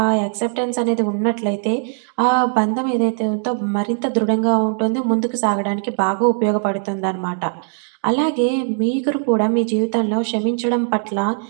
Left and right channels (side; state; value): left; silent; 57 dB below the other